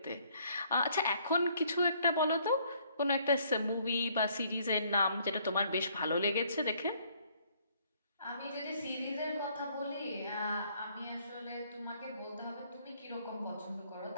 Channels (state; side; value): inverted; both; correlation -0.64